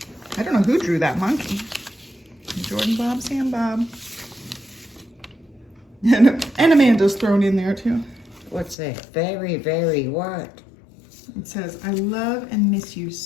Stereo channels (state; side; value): drops out; right; at 8.8 s